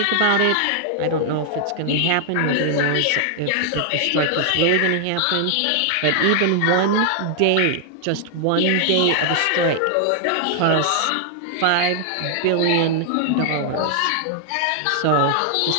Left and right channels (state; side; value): different; both; correlation 0.00